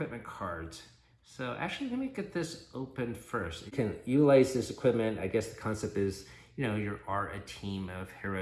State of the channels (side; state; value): both; identical; correlation 1.00